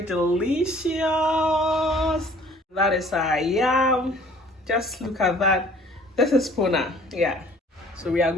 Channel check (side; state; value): both; normal; correlation 0.53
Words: delicious. That is our yam. Just look at that. This is puna. Yeah. So we are